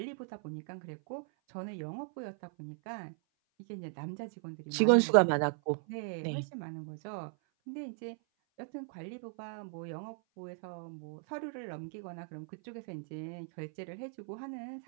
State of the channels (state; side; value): silent; left; 53 dB below the other